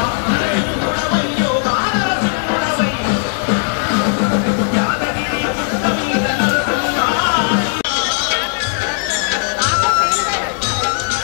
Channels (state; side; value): silent; right; digital silence